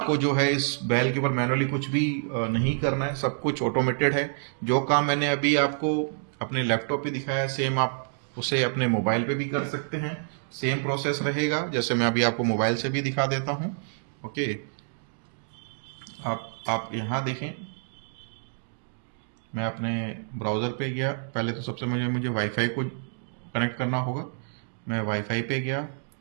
जो है इस बेल के ऊपर मैनुअली कुछ भी नहीं करना है, सब कुछ ऑटोमेटेड है। जो काम मैंने अभी आपको अपने लैपटॉप पे दिखाया सेम आप उसे अपने मोबाइल पे भी कर सकते हैं, सेम प्रोसेस रहेगा। जैसे मैं अभी आपको मोबाइल से भी दिखा देता हूं। ओके, आप यहाँ देखें, मैं अपने ब्राउज़र पे गया। पहले तो सबसे मुझे वाईफाई को कनेक्ट करना होगा। मैं वाईफाई पे गया,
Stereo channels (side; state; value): left; silent; digital silence